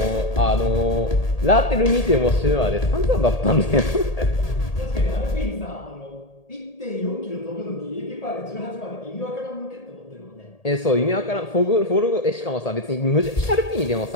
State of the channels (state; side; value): late; right; 1.8 ms